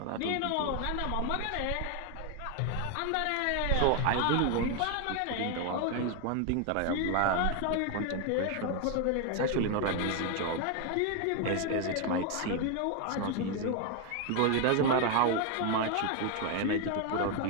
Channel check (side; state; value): both; different; correlation 0.01